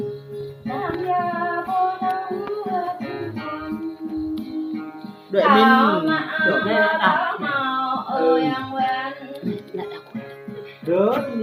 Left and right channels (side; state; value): both; identical; correlation 1.00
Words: Đợi mình Được đây đã. Rớt